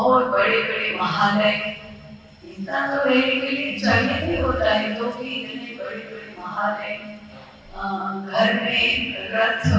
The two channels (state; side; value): identical; both; correlation 1.00